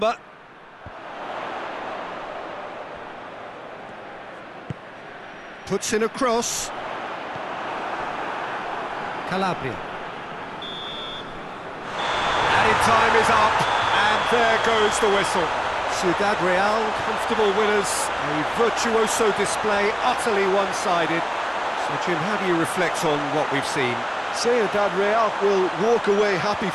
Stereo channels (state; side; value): identical; both; correlation 1.00